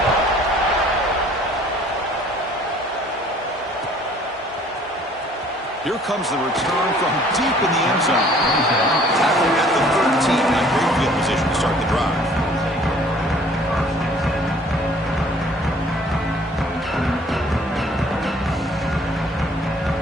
Here comes the return from deep in the end zone. Tackling at the 13. Not great field position to start the drive.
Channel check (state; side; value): normal; both; correlation 0.55